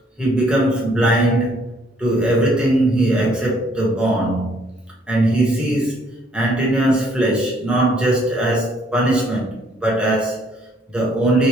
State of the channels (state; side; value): normal; both; correlation 0.64